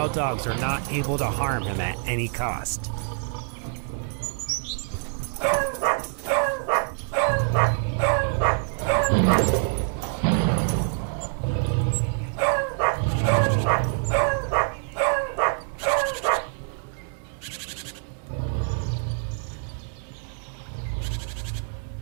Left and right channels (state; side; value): silent; left; 58 dB below the other